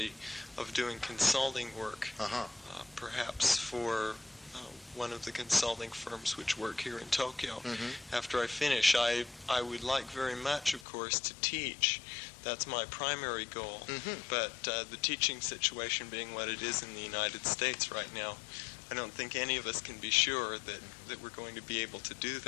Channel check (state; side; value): drops out; right; at 10.9 s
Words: of doing consulting work, perhaps for one of the consulting firms which work here in Tokyo. After I finish, I would like very much, of course, to teach. That's my primary goal. But the teaching situation being what it is in the United States right now, I don't think any of us can be sure that we're going to be able to do